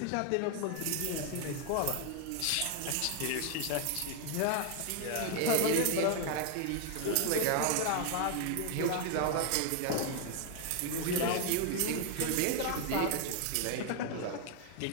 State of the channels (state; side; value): different; both; correlation 0.01